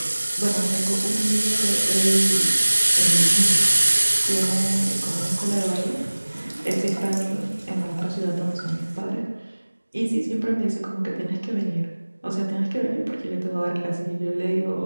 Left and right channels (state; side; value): inverted; both; correlation -1.00